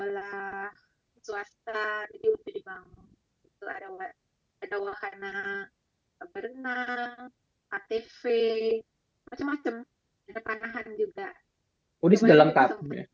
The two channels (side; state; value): both; identical; correlation 1.00